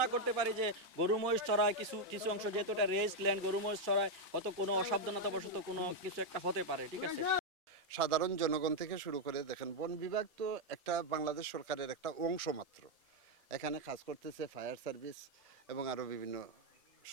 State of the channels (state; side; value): normal; both; correlation 0.02